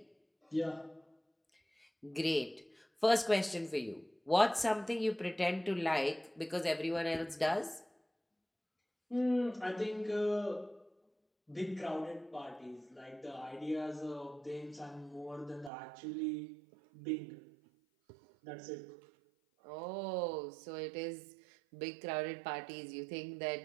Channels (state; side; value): drops out; left; at 15.7 s